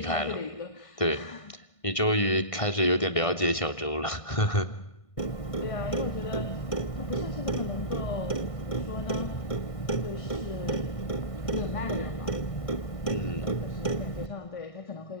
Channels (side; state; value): right; late; 1.5 ms